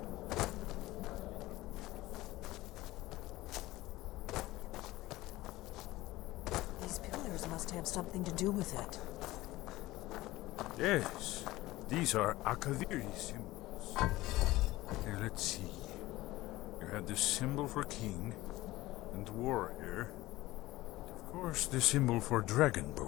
These pillars must have something to do with it. Yes, these are Akaviri symbols. Here, let's see. You had the symbol for king and warrior. Of course, the symbol for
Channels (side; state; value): right; quieter; 18.1 dB